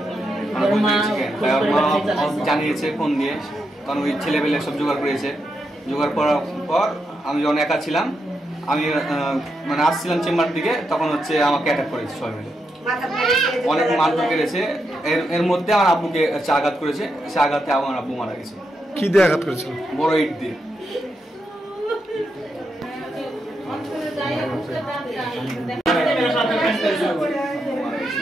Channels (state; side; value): normal; both; correlation 0.83